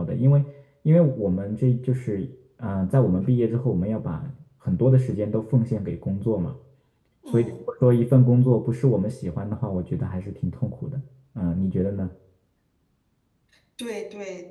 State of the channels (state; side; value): identical; both; correlation 1.00